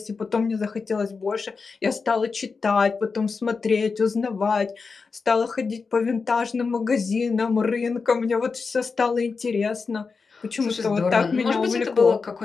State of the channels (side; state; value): right; quieter; 4.8 dB